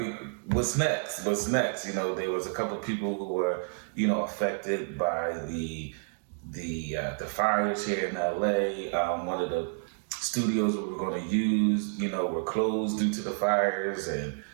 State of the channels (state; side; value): silent; left; 58 dB below the other